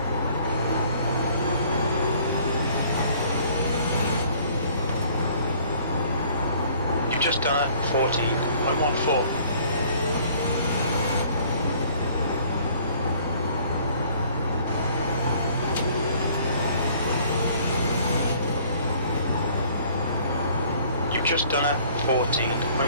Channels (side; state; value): both; inverted; correlation -0.56